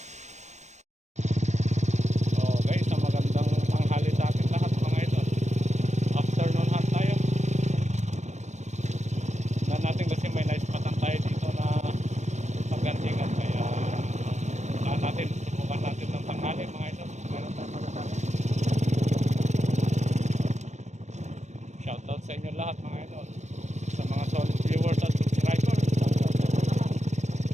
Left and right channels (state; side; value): late; left; 0.34 ms